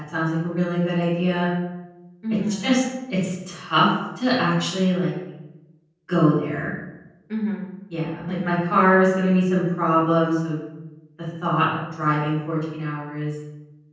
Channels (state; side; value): identical; both; correlation 1.00